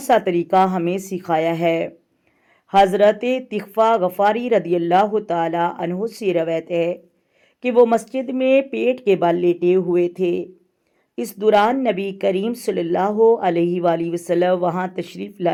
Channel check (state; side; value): identical; both; correlation 1.00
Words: तरीका हमें सिखाया है। हज़रत तिग़फ़ा गफ़ारी रदियल्लाहु ताला अन्हु से रवायत है कि वो मस्जिद में पेट के बल लेटे हुए थे। इस दौरान नबी करीम सल्लल्लाहु अलैहि वसल्लम वहाँ तशरीफ़